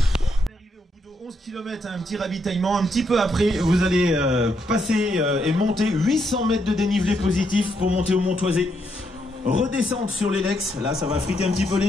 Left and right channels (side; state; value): both; normal; correlation 0.77